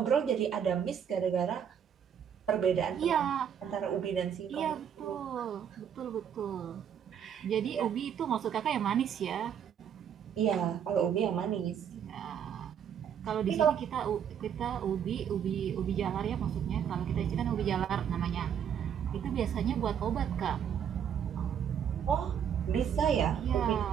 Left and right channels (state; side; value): quieter; left; 8.4 dB